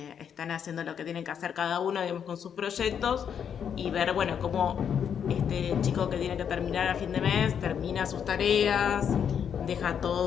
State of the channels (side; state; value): right; quieter; 8.0 dB